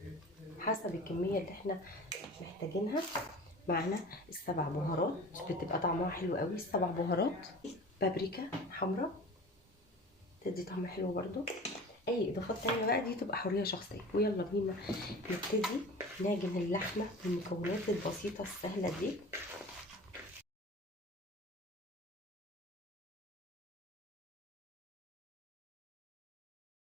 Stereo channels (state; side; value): normal; both; correlation 0.39